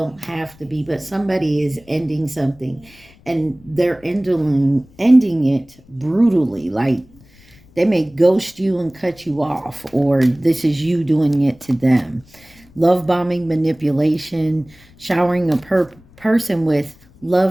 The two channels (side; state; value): left; noise; rumble, 27 dB below the sound